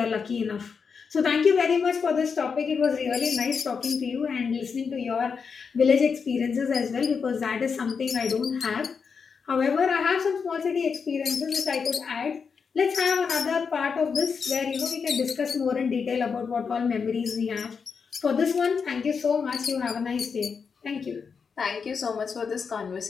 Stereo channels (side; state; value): right; quieter; 5.8 dB